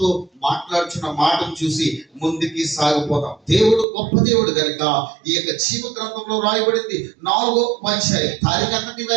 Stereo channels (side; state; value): left; drops out; at 3.9 s